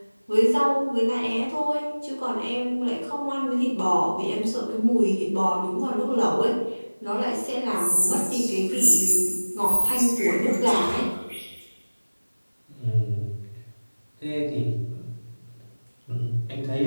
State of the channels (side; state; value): both; inverted; correlation -1.00